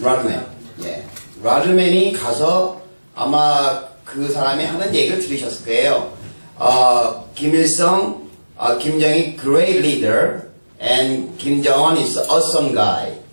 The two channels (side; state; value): both; inverted; correlation -1.00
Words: 예. 라드맨이 가서 아마 그 사람이 하는 얘기를 들으셨을 거예요. 김일성, 김정일 great leader and Kim Jong-un is awesome guy.